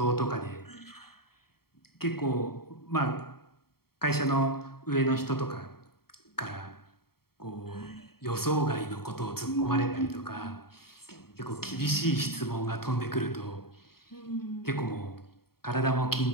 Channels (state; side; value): late; right; 0.94 ms